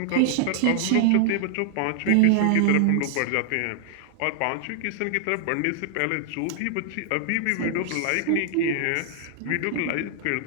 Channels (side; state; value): both; different; correlation 0.00